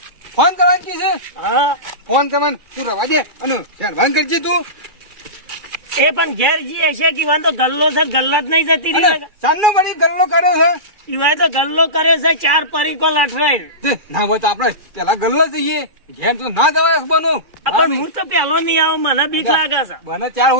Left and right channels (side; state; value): left; late; 2.3 ms